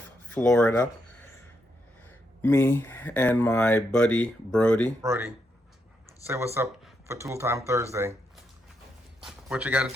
Florida. Me and my buddy Brody. Brody, say what's up for Tool Time Thursday. What you got to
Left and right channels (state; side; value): normal; both; correlation 0.80